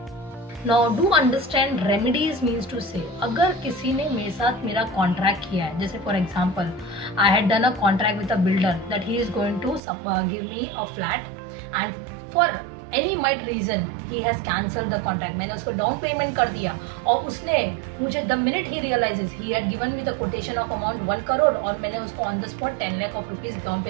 Now do understand remedies means to say अगर किसी ने मेरे साथ मेरा contract किया है, जैसे for example I had done a contract with a builder that he is going to give me a flat and for any might reason he has cancel the contract. मैंने उसको डाउन पेमेंट कर दिया और उसने मुझे the minute he realises he had given me the quotation of amount 1 crore और मैंने उसको on the spot 10 lakh of rupees down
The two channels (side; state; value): left; drops out; at 9.8 s